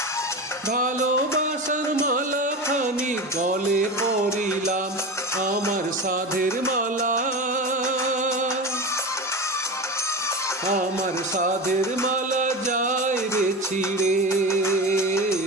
ভালোবাসার মালা খানি গলে পরিলাম, আমার সাধের মালা, আমার সাধের মালা যায় রে ছিঁড়ে।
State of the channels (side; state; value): both; normal; correlation 0.26